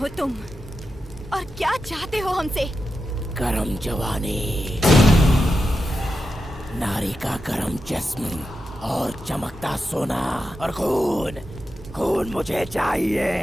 तुम और क्या चाहते हो हमसे? गरम जवानी, नारी का गरम जिस्म और चमकता सोना और खून। खून मुझे चाहिए।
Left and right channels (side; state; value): both; normal; correlation 0.89